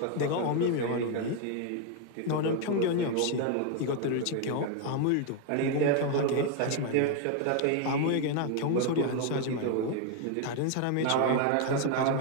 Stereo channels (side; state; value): both; different; correlation 0.01